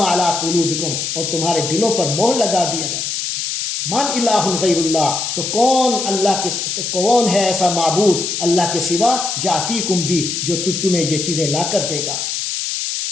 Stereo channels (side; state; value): left; noise; hiss, 3 dB below the sound